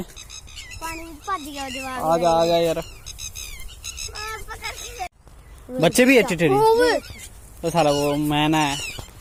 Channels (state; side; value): identical; both; correlation 1.00